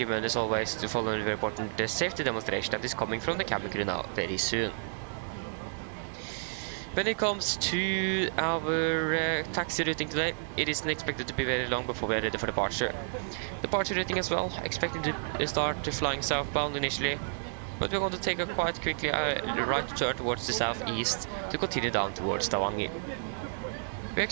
as always to follow the very important safety demonstration that is coming from the cabin crew now very soon. When it comes to our taxi routing today, it isn't expected to be very long before we are ready for departure. Departure routing as well, expected to start flying southbound initially, but we're going to take a quite quickly right turn towards the southeast to continue down towards Stavanger. We're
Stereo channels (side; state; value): left; silent; digital silence